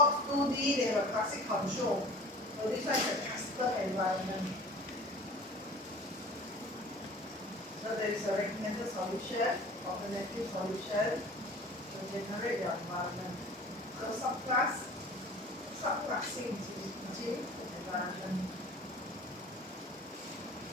2D, they have a classic control. So this one is a custom environment. So there is a recommended solution, alternative solution to generate your environment. So subclassing gene environment.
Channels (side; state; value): both; normal; correlation 0.43